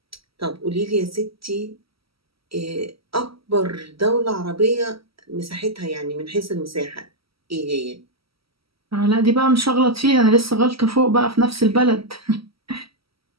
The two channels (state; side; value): late; left; 0.75 ms